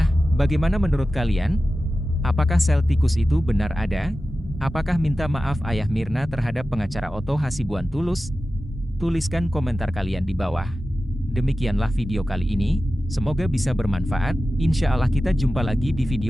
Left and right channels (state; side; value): normal; both; correlation 0.94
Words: bagaimana menurut kalian? Apakah sel tikus itu benar ada? Apakah minta maaf Ayah Mirna terhadap pengacara Otto Hasibuan tulus? Tuliskan komentar kalian di bawah. Demikianlah video kali ini, semoga bisa bermanfaat. Insya Allah kita jumpa lagi di